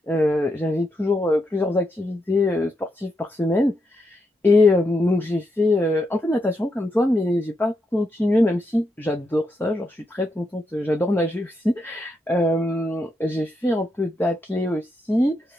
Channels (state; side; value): normal; both; correlation 0.82